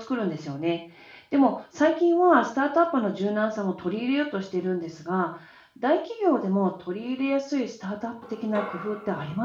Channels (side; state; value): both; identical; correlation 1.00